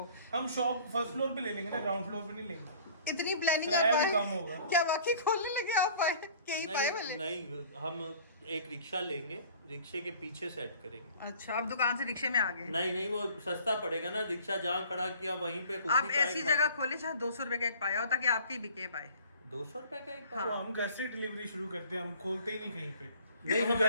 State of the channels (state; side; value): inverted; both; correlation -0.50